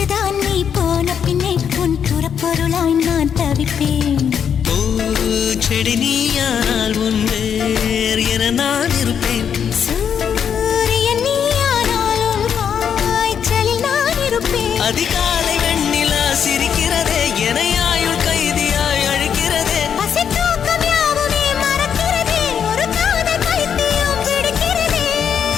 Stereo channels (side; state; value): right; quieter; 7.9 dB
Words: நீ போன பின்னே உன் புறப்பொருளாய் நான் தவிப்பேன். பூச்செடி நீயானால் உன் வேர் என நான் இருப்பேன். சூரியன் நீயானால் உன் காய்ச்சலில் நான் இருப்பேன். அதிகாலை வெண்ணிலா சிரிக்கிறதே என ஆயுள் கைதியாய் அழைக்கிறதே. பசி தூக்கம் யாவுமே மறக்கிறதே, ஒரு காதல் பைத்தியம் பிடிக்கிறதே.